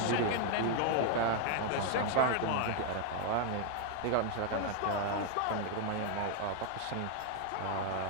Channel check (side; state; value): both; different; correlation 0.00